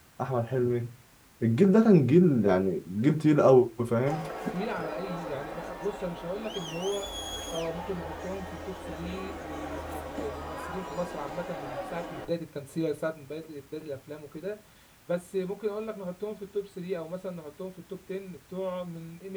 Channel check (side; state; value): both; identical; correlation 1.00